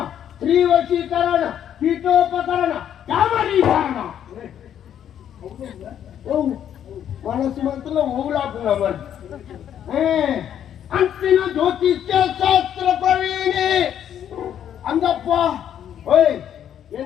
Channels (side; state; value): right; quieter; 9.8 dB